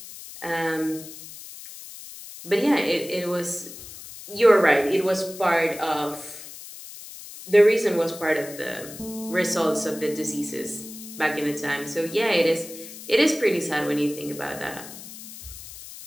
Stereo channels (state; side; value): noise; left; hiss, 14 dB below the sound